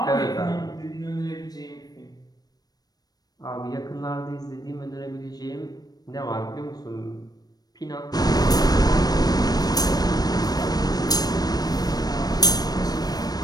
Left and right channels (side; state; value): right; late; 0.19 ms